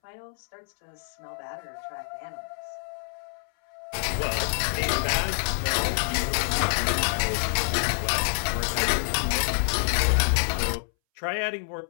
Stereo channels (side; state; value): right; silent; 60 dB below the other